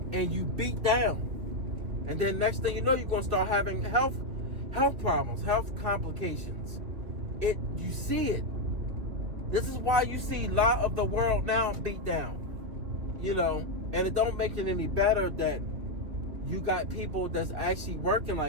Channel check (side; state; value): left; late; 2.9 ms